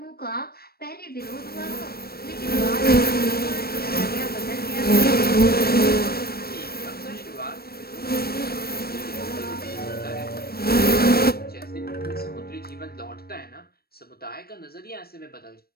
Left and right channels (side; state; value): right; late; 0.44 ms